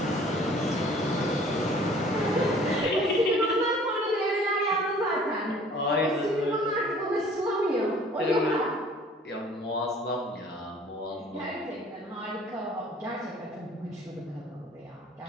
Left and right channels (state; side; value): normal; both; correlation 0.52